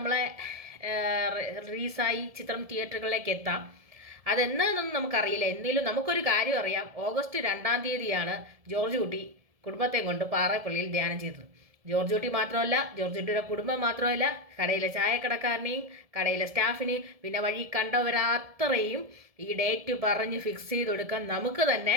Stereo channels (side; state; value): left; late; 1.7 ms